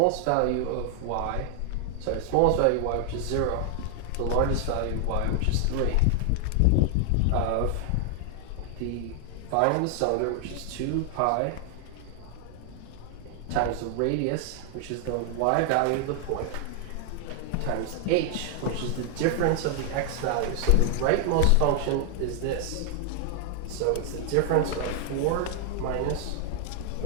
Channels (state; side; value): different; both; correlation 0.00